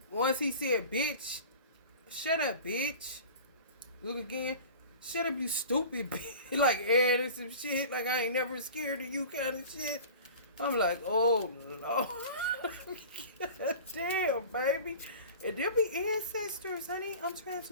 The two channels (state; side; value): inverted; both; correlation -0.39